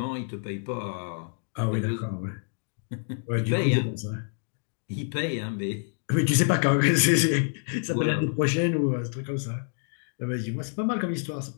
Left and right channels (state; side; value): silent; right; 60 dB below the other